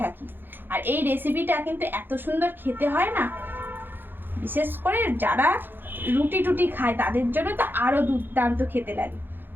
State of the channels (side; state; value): left; late; 0.097 ms